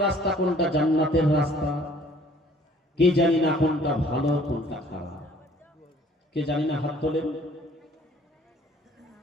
রাস্তা কোনটা জান্নাতের রাস্তা, কে জানি না কোনটা ভালো কোনটা খারাপ, কে জানি না। হাত তোলেন।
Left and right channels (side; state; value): both; normal; correlation 0.56